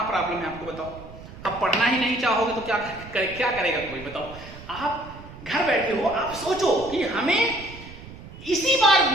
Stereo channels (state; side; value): noise; right; rumble, 16 dB below the sound